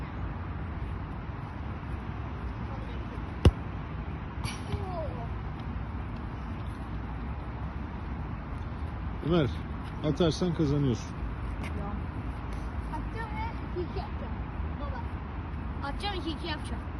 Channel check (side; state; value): both; identical; correlation 1.00